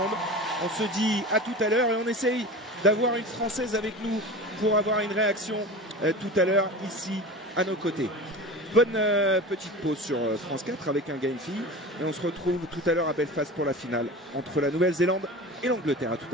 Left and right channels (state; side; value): normal; both; correlation 0.32